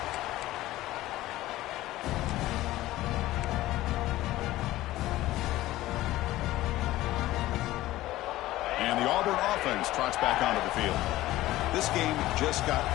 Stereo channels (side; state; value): right; quieter; 16.2 dB